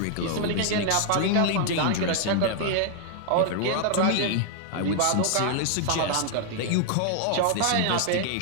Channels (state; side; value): different; both; correlation 0.00